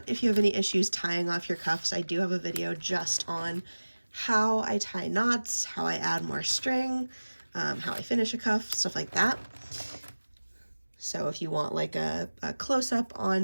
If you have any issues tying off your cuffs, I do have a video just on how I tie knots, how I add more string, how I finish a cuff, stuff like that. So if you want like a close-up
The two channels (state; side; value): inverted; both; correlation -1.00